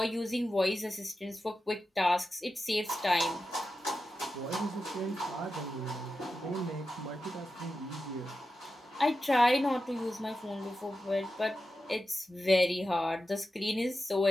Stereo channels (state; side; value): normal; both; correlation 0.91